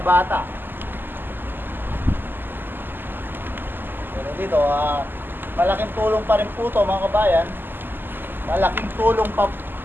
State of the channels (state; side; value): late; left; 0.094 ms